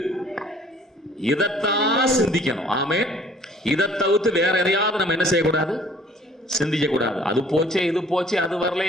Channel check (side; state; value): both; normal; correlation 0.55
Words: இதைத்தான் சிந்திக்கணும். ஆமென். இதை தவிர்த்து வேற எதையாவது நம்ம என்ன செய்யக்கூடாது, சிந்திக்க கூடாது. அது போச்சே, இது போச்சே, அது வரல,